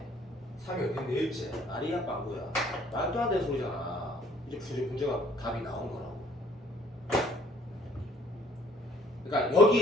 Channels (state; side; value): normal; both; correlation 0.60